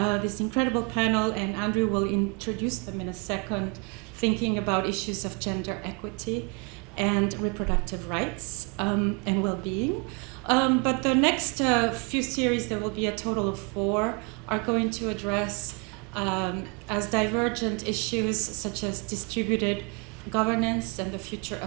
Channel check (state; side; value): quieter; left; 33.9 dB